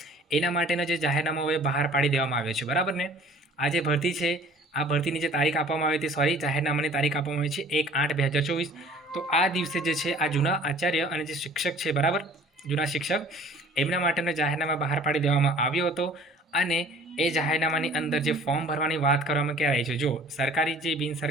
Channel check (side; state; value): both; normal; correlation 0.50